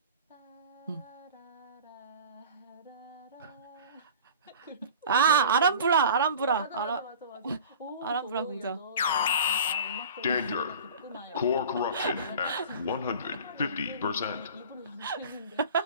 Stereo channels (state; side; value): inverted; both; correlation -0.40